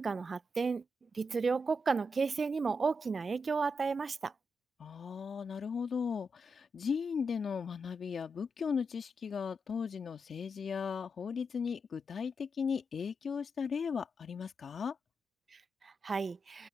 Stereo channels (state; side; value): normal; both; correlation 0.84